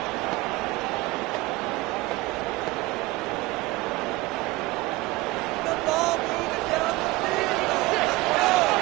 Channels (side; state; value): left; quieter; 20.6 dB